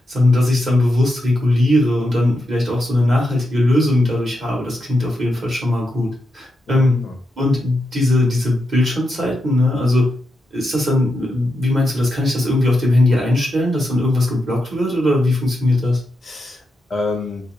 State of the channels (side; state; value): both; normal; correlation 0.86